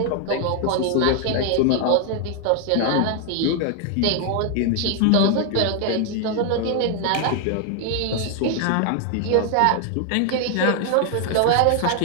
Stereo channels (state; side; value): different; both; correlation 0.00